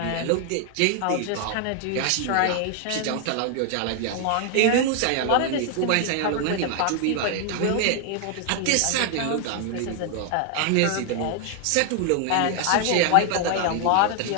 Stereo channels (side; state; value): both; different; correlation 0.00